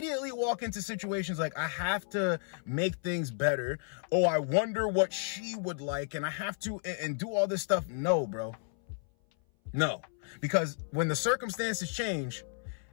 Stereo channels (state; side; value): silent; right; 56 dB below the other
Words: walk into situations like, I have to make things better. Oh, I wonder what she would like. And I have to and do all this stuff. No, bro. No, because when the circumstances change,